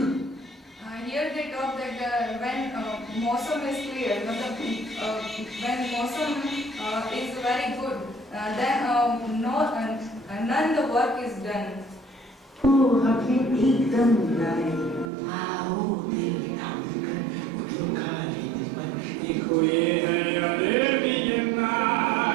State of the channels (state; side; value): drops out; left; at 15.1 s